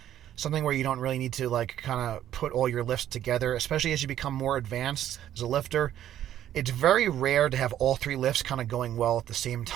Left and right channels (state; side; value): quieter; left; 11.5 dB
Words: Something where you don't really need to kind of put all your lifts together, especially as you become more advanced as a lifter. It's very rare to have all 3 lifts kind of going well at the same